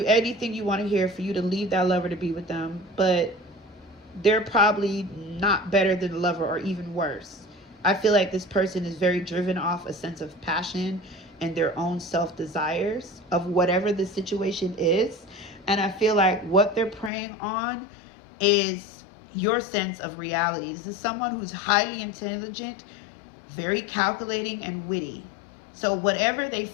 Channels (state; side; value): drops out; right; at 17.1 s